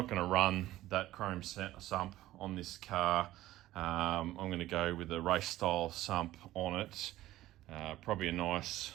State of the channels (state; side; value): quieter; left; 15.5 dB